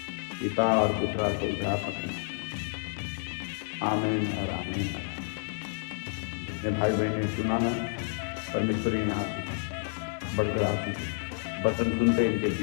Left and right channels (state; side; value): silent; right; digital silence